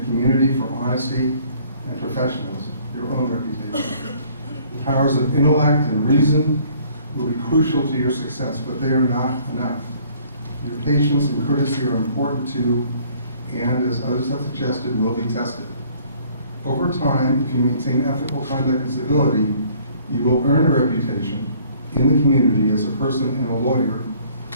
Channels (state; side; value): inverted; both; correlation -0.58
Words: community for honesty and professionalism, your own reputation. The powers of intellect and reason will be crucial to your success, but they are not enough. Your patience and courtesy are important too, and as others have suggested, will be tested. Over time, if you maintain ethical conduct and civility, you will earn a reputation in the community as a person and a lawyer